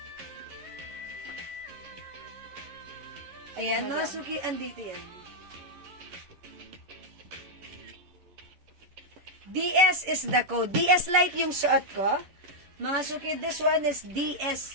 Ayan, mga suki, andito yan. DS is the code. DS Light yung suot ko. Mga suki, this one is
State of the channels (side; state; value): left; late; 11 ms